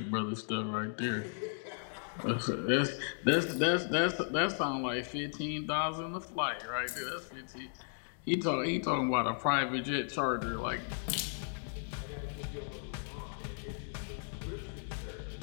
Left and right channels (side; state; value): right; silent; digital silence